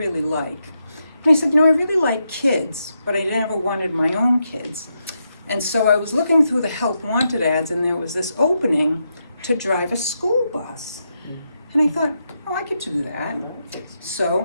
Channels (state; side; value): inverted; both; correlation -0.83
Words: like? And I said, I really like kids, but I never wanted my own kids. And so I was looking through the Help Wanted ads, and there was this opening to drive a school bus. And I thought, oh, I could do that.